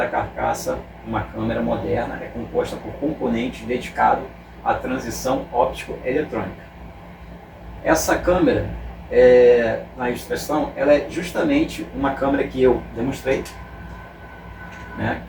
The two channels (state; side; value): identical; both; correlation 1.00